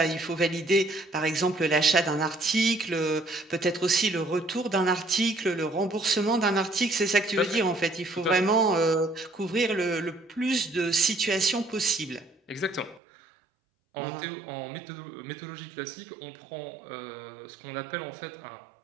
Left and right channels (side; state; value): left; drops out; at 13.0 s